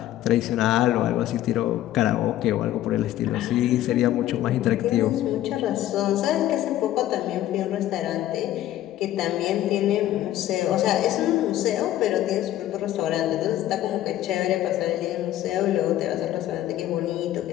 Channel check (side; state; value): right; quieter; 13.4 dB